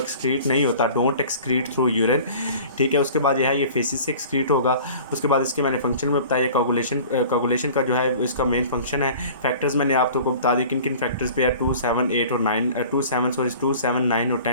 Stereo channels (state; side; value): inverted; both; correlation -0.44